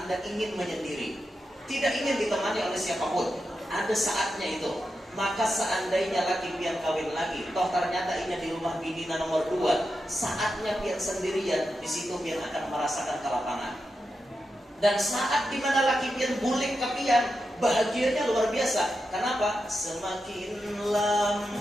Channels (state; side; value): normal; both; correlation 0.88